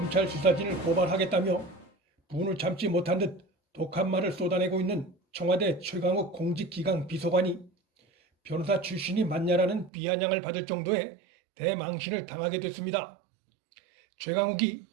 수사진을 고발하겠다며 분을 참지 못한 듯 독한 말을 쏟아내고 있는 청와대 최강욱 공직기강 비서관이 변호사 출신이 맞냐라는 비아냥을 받을 정도의 대망신을 당하게 됐습니다. 최강욱이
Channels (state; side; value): drops out; left; at 9.9 s